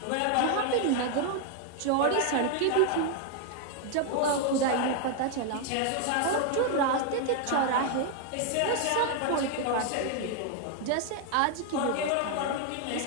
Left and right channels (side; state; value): both; different; correlation 0.00